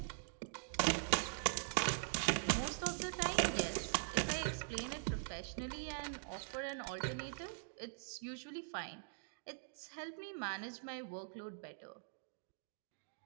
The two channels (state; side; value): silent; left; digital silence